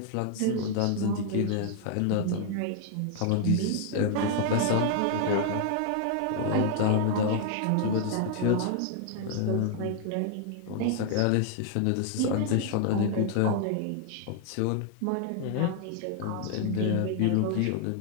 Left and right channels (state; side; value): different; both; correlation 0.00